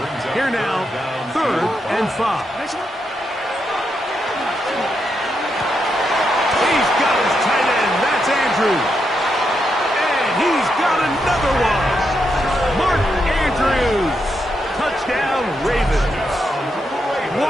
Here now, 3rd and 5. He's got his tight end. That's Andrews. And he's got another one. Mark Andrews. Touchdown, Ravens.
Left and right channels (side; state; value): both; normal; correlation 0.82